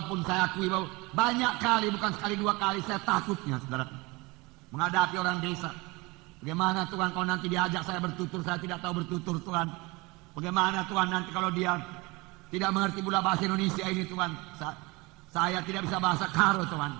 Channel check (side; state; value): left; quieter; 24.5 dB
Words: saya akui bahwa banyak kali, bukan sekali dua kali, saya takutnya, saudara, menghadapi orang desa. Bagaimana Tuhan kalau nanti diajak saya bertutur, saya tidak tahu bertutur Tuhan. Bagaimana Tuhan nanti kalau dia tidak mengerti pula bahasa Indonesia ini Tuhan. Saya tidak bisa bahasa Karo Tuhan.